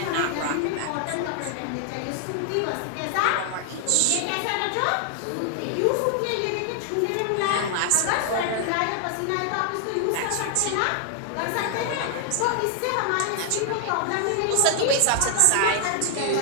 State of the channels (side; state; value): both; different; correlation 0.00